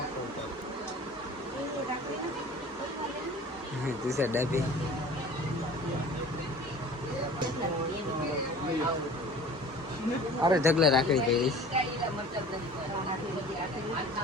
તુષાર ડાબી અરે ઢગલા રાખડી પહેરીશ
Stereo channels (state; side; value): normal; both; correlation 0.44